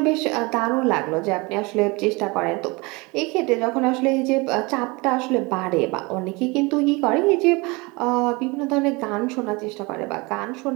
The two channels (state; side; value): quieter; left; 26.0 dB